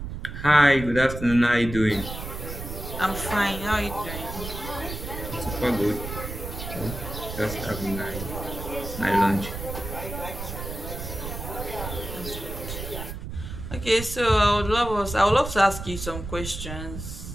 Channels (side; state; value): right; noise; rumble, 8 dB below the sound